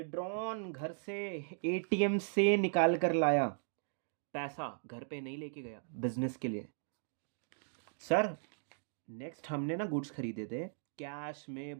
घर से, एटीएम से निकाल कर लाया, पैसा घर पे नहीं लेके गया बिजनेस के लिए। सर नेक्स्ट हमने ना गुड्स खरीदे थे, कैश में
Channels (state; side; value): silent; left; digital silence